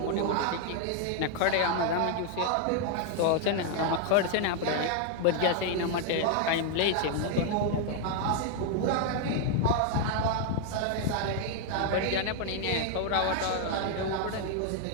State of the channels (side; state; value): both; different; correlation 0.00